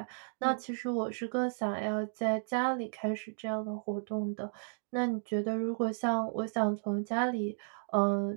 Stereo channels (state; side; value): silent; left; 55 dB below the other